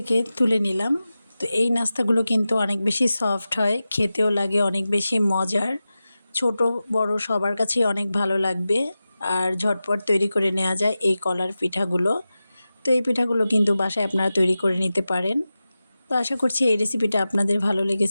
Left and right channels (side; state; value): both; inverted; correlation -0.94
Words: তুলে নিলাম। তো এই নাস্তাগুলো কিন্তু অনেক বেশি সফট হয়, খেতেও লাগে অনেক বেশি মজার। ছোট বড় সবার কাছেই অনেক ভালো লাগবে আর ঝটপট তৈরি করে নেওয়া যায় এই কলার পিঠাগুলো। তো এই পিঠাগুলো কিন্তু বাসায় আপনারা তৈরি করে নিতে পারেন। তো আশা করছি এই রেসিপিটা আপনাদের ভালো